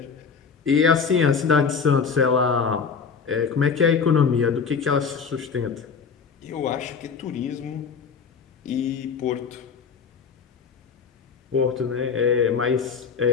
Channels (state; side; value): quieter; right; 5.9 dB